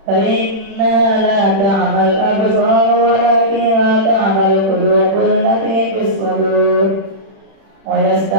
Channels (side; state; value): left; late; 36 ms